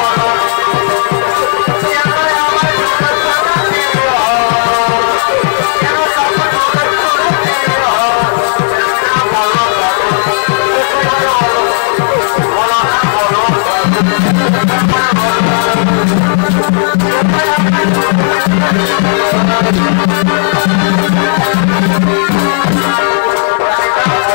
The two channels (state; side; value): silent; right; digital silence